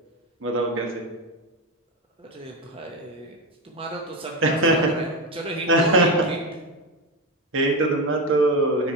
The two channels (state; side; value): normal; both; correlation 0.16